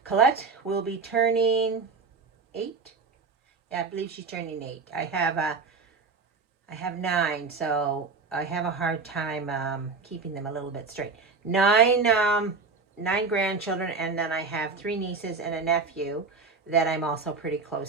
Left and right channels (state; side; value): quieter; left; 4.5 dB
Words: Colette will be turning 8. Yeah, I believe she's turning 8. I have 9, so I have a hard time keeping them a little bit straight. 9 grandchildren, and then I have 3 nieces and a nephew that I'm also pretty